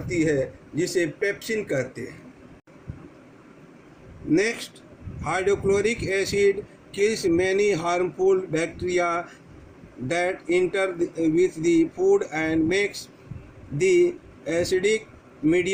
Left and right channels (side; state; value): both; identical; correlation 1.00